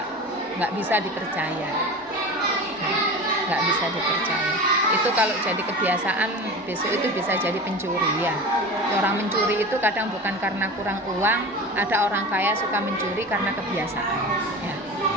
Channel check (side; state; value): both; normal; correlation 0.31